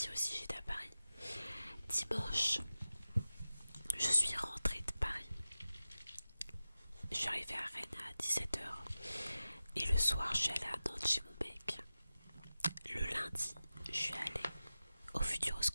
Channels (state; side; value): inverted; both; correlation -0.94